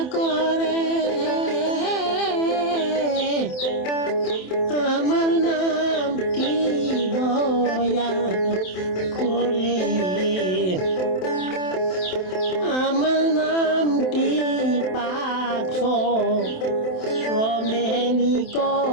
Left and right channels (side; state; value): right; late; 27 ms